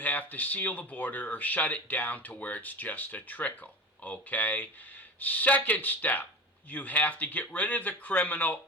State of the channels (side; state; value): both; normal; correlation 0.31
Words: to seal the border or shut it down to where it's just a trickle, okay? Second step, you have to get rid of the criminal